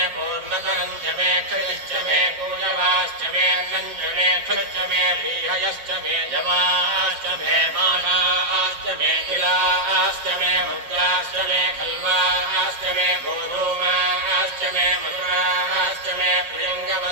पूर्णतरञ्च मे क्षतिश्च मे पूजवाश्च मे अन्नञ्च मे क्षुश्च मे बीहयश्च मे जवाश्च मे माषाश्च मे किलाश्च मे मुद्राश्च मे खल्वाश्च मे गोधूमाश्च मे मधुराश्च मे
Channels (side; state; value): left; late; 7.3 ms